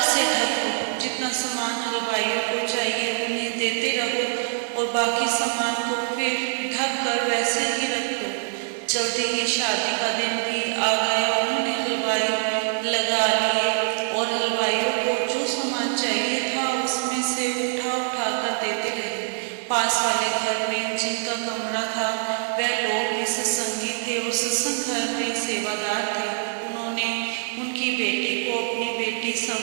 से ढक दो। जितना सामान हलवाइयों को चाहिए उन्हें देते रहो और बाकी सामान को फिर ढक कर वैसे ही रख दो। जल्दी ही शादी का दिन भी आ गया। उन्होंने हलवाई लगा लिए और हलवाइयों को जो सामान चाहिए था उसमें से उठा उठा कर देते रहे। पास वाले घर में जिनका कमरा था वह लोग भी सत्संगी थे और सत्संग घर में सेवादार थे। उन्होंने उनकी बेटी को अपनी बेटी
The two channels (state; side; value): silent; left; 62 dB below the other